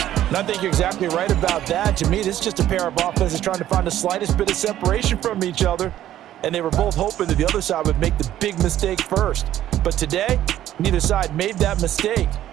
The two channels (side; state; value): left; quieter; 12.5 dB